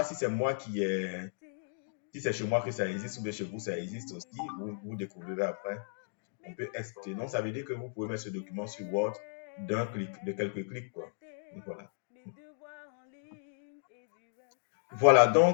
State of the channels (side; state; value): right; silent; digital silence